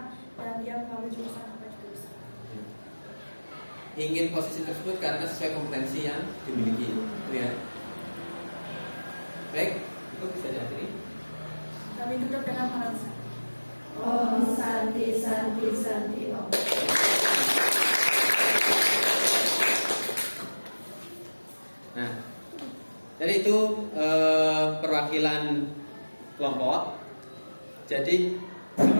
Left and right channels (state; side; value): inverted; both; correlation -1.00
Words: dan dia mengambil jurusan apa juga bisa. Ingin posisi tersebut karena sesuai kompetensi yang dimiliki, itu ya. Baik, itu bisa diakhiri. Kami tutup dengan pengalaman. Om Santi Santi Santi Om. Nah, jadi itu perwakilan kelompok. Jadi